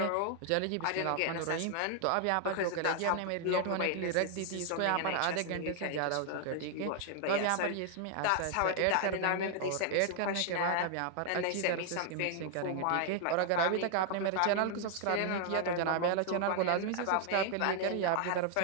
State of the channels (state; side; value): different; both; correlation 0.00